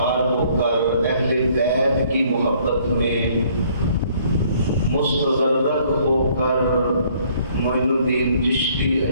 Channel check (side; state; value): both; inverted; correlation -0.62